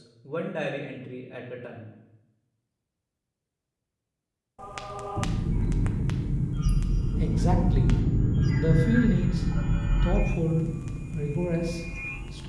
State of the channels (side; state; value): both; identical; correlation 1.00